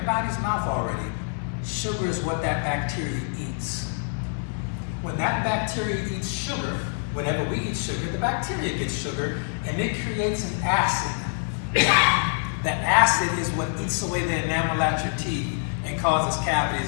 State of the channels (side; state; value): right; silent; 61 dB below the other